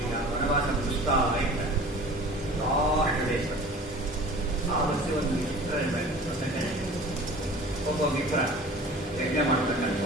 ಈಗ ವನವಾಸ ಮುಗಿಸ್ತಾ ಇದ್ದಾರೆ. ಲಾಸ್ಟ್ ದೇಶ ಆವತ್ತು ಒಂದು ಮಿತ್ರ ಇರಬೇಕು. ಒಬ್ಬ ಮಿತ್ರ ಯಜ್ಞ ಮಾಡ್ತಕ್ಕಂಥ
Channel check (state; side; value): normal; both; correlation 0.43